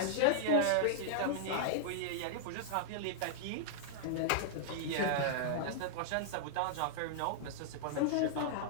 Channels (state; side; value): different; both; correlation -0.01